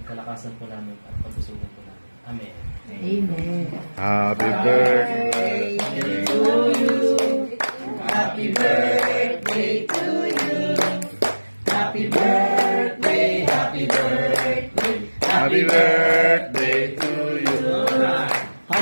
kalakasan po namin at kabusugan po namin. Amen. Amen. Happy birthday to you. Happy birthday to you. Happy birthday, happy birthday. Happy birthday to you.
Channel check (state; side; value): inverted; both; correlation -1.00